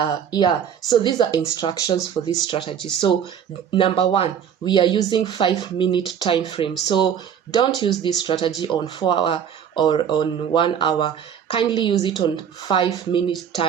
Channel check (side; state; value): left; quieter; 8.3 dB